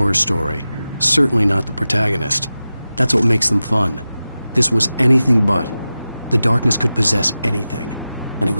story, certainly not the protagonist. That's what makes them fun. This was anything but. The darkness could possess anything, and it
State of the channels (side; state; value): both; inverted; correlation -0.94